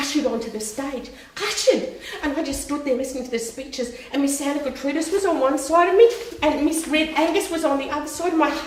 onto the stage. Ushered! And I just stood there listening to the speeches, and Miss Santa Gertrudis was on one side of me, and Miss Red Angus was on the other side, and my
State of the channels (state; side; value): identical; both; correlation 1.00